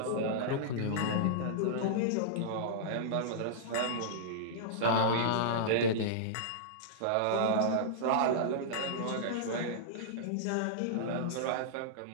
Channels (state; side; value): different; both; correlation -0.02